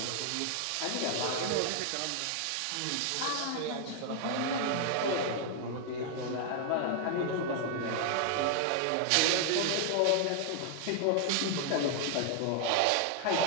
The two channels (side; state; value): both; different; correlation 0.00